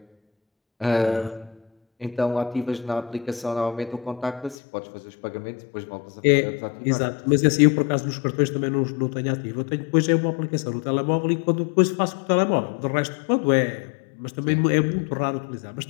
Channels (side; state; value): right; drops out; at 4.5 s